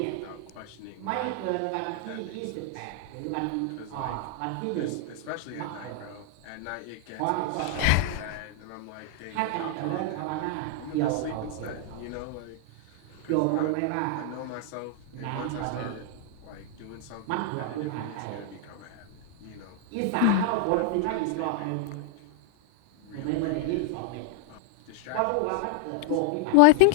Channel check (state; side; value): different; both; correlation 0.00